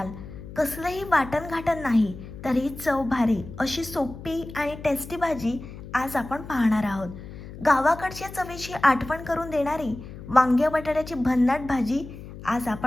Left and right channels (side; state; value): left; noise; hum, 13 dB below the sound